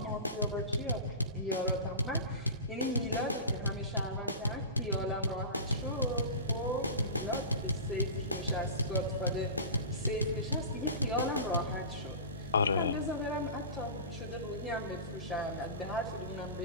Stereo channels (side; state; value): both; inverted; correlation -0.31